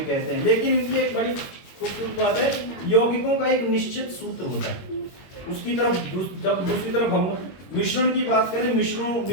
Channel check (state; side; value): late; right; 21 ms